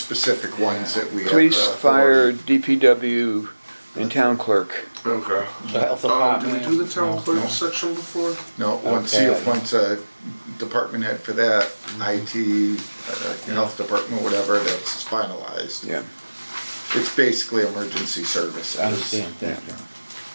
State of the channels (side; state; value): both; inverted; correlation -1.00